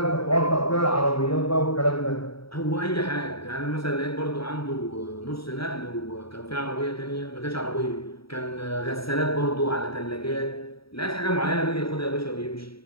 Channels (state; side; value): late; right; 0.75 ms